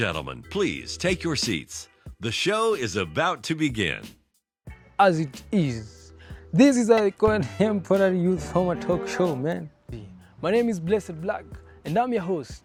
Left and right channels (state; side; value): identical; both; correlation 1.00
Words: please take your seats. The show is about to begin. As it is. This is a contemporary youth format talk show, man. My name is Blak, and I'm your